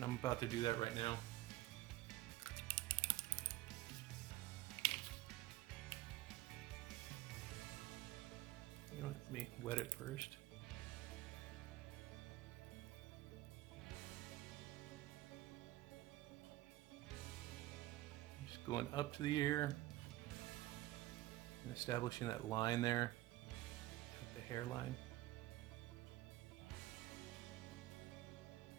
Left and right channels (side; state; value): left; quieter; 16.6 dB